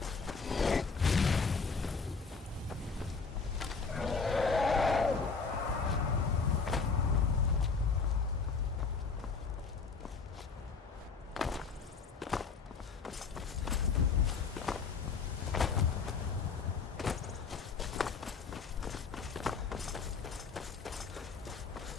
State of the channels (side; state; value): right; quieter; 5.0 dB